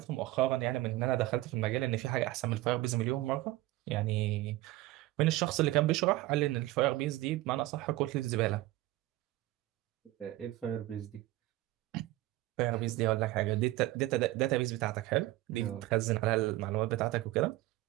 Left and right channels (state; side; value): quieter; left; 17.5 dB